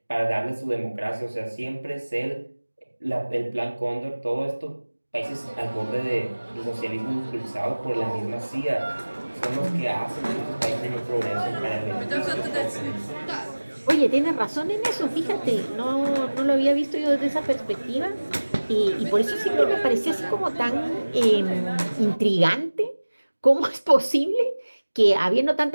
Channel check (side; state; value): both; inverted; correlation -1.00